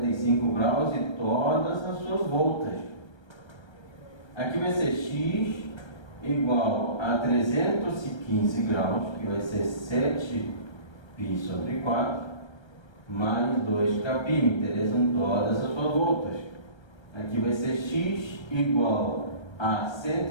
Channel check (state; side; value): late; right; 1.3 ms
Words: graus e todas as suas voltas. Aqui vai ser x igual a 315 graus, que vai ser 7π sobre 4, mais 2kπ. Me interessam todas as suas voltas. Aqui vai ser x igual a